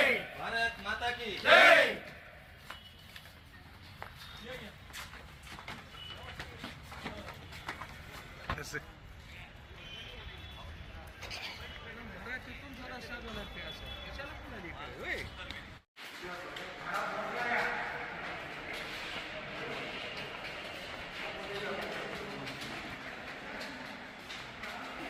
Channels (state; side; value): identical; both; correlation 1.00